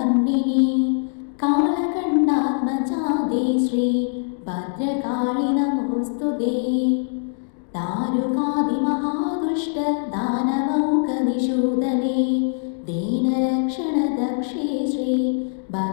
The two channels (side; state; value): right; silent; digital silence